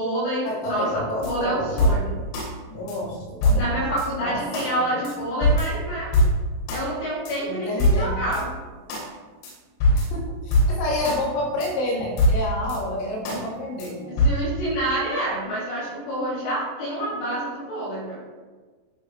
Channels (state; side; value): late; right; 28 ms